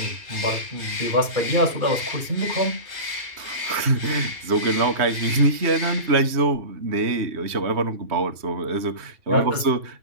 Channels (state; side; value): late; left; 3.1 ms